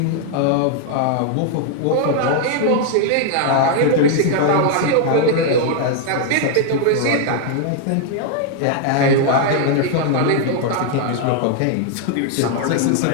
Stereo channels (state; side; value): different; both; correlation 0.00